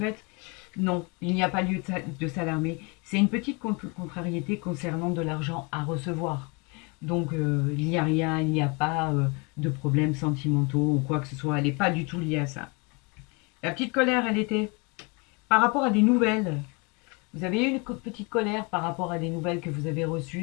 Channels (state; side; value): quieter; right; 30.5 dB